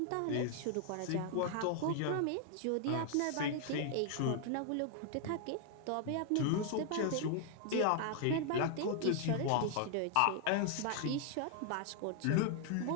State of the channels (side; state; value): both; different; correlation 0.00